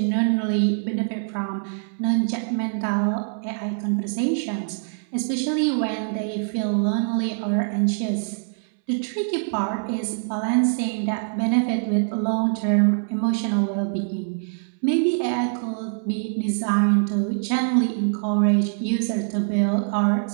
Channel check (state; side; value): silent; left; 63 dB below the other